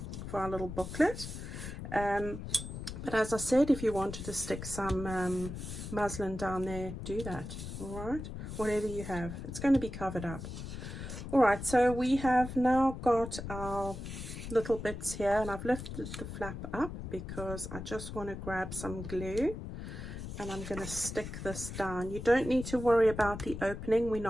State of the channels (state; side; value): noise; left; rumble, 8 dB below the sound